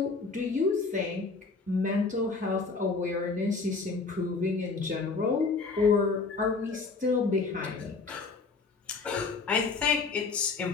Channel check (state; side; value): quieter; right; 4.3 dB